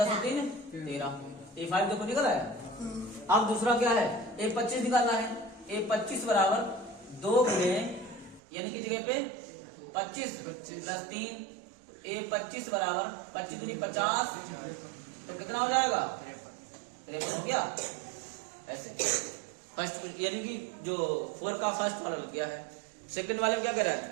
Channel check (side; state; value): left; drops out; at 8.4 s